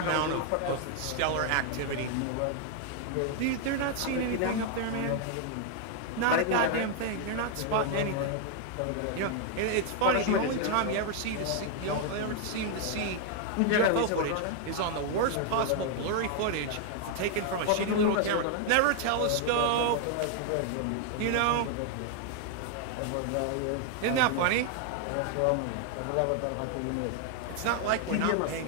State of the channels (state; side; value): different; both; correlation 0.00